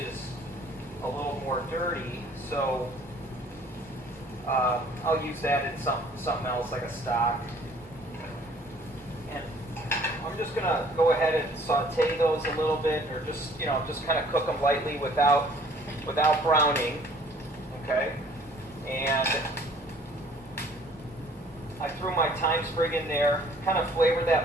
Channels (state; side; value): normal; both; correlation 0.55